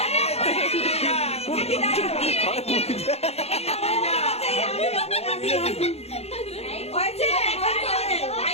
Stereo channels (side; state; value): right; late; 0.30 ms